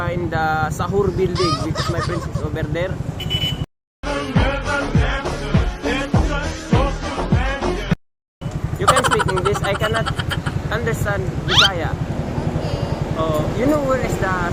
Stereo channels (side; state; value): both; identical; correlation 1.00